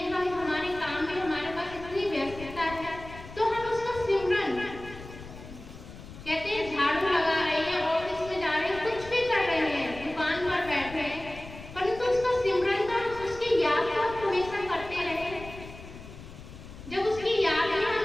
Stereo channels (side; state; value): left; noise; rumble, 15 dB below the sound